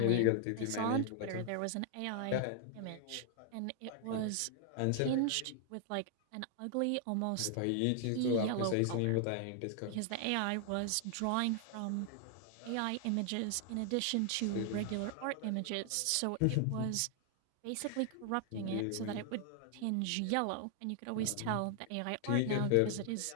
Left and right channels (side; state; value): both; different; correlation 0.00